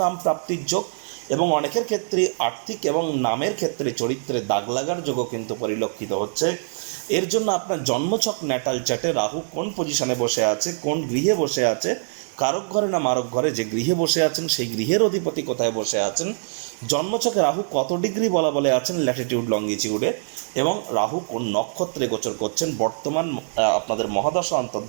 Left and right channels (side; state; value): left; silent; digital silence